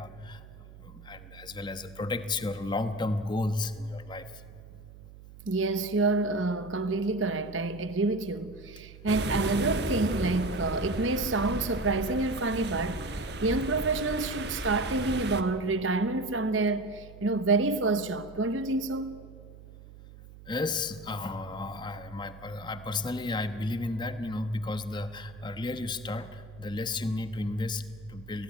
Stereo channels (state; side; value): noise; right; hum, 18 dB below the sound